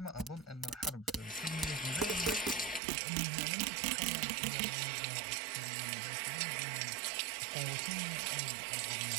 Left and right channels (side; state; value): left; drops out; at 2.8 s